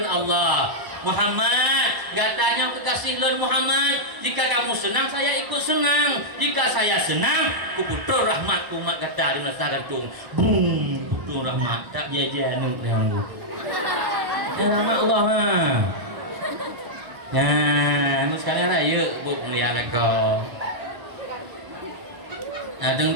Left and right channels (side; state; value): left; late; 1.0 ms